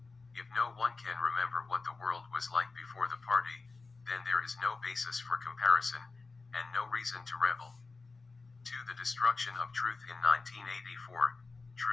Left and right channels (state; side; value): quieter; right; 4.0 dB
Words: If no one can remember what the world was like before the party, then there is no basis for comparison, and no reason to rebel. 2. The destruction of truth. In 1984,